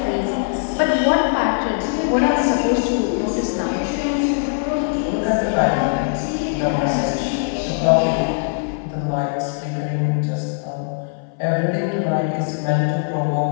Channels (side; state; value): right; silent; 56 dB below the other